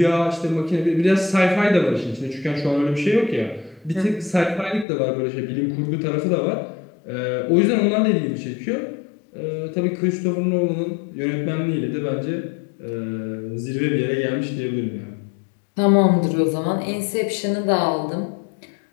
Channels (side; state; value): right; drops out; at 4.9 s